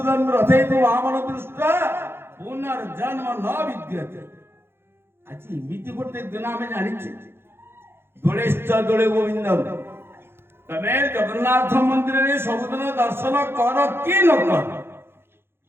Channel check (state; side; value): late; left; 0.11 ms